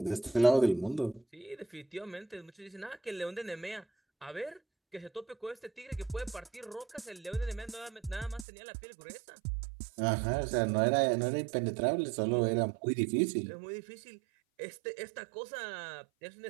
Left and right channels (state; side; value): drops out; left; at 8.5 s